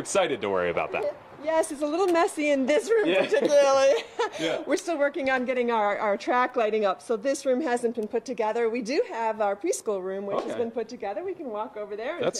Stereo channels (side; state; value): both; identical; correlation 1.00